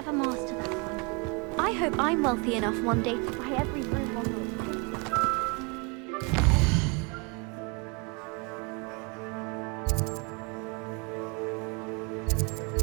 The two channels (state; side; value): quieter; left; 31.2 dB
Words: master that one. I hope I'm wealthy enough one day to buy every room on the